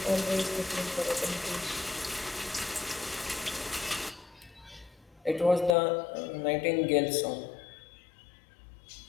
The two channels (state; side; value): drops out; right; at 5.8 s